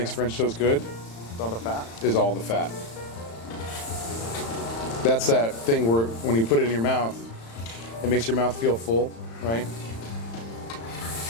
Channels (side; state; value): right; late; 35 ms